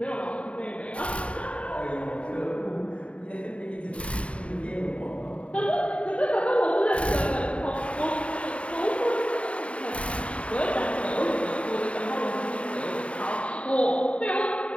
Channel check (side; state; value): right; late; 0.062 ms